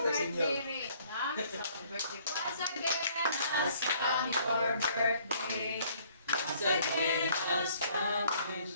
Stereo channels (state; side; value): inverted; both; correlation -0.61